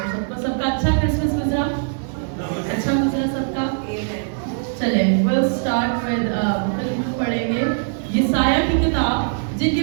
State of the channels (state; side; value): silent; left; digital silence